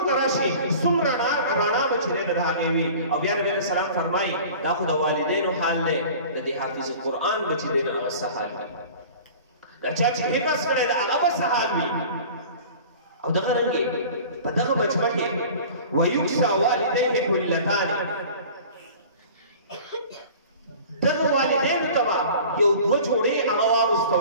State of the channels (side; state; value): both; inverted; correlation -0.42